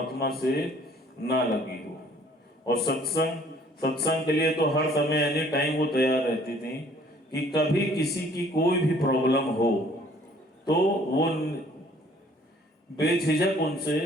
से ना लगी हो। और सत्संग के लिए तो हर समय एनी टाइम वो तैयार रहती थी कि कभी किसी की कोई भी प्रॉब्लम हो तो वो बेझिझक उनसे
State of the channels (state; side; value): normal; both; correlation 0.57